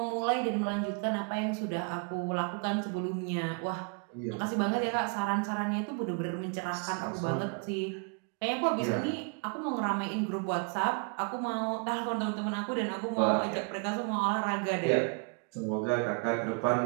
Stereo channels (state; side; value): quieter; left; 37.4 dB